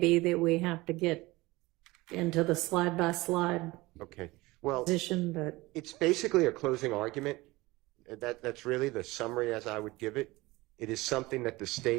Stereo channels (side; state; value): left; quieter; 20.8 dB